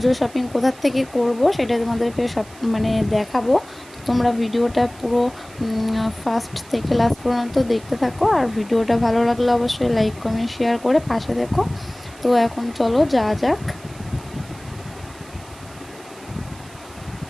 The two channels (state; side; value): noise; right; hiss, 22 dB below the sound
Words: শপিং কোথার থেকে করব সেটা তোমাদেরকে সব দেখাবো। তো তোমরা ভিডিওটা পুরো ফার্স্ট থেকে লাস্ট পর্যন্ত দেখতে থাকো, আর ভিডিওটা ভালো লাগলে অবশ্যই লাইক কমেন্ট শেয়ার করে পাশে দেখো। তো এখন চলো যা যাক।